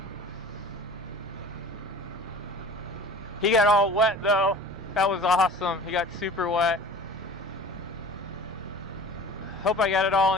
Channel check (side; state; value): both; normal; correlation 0.41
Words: He got all wet though. That was awesome. He got super wet. Hope I got it all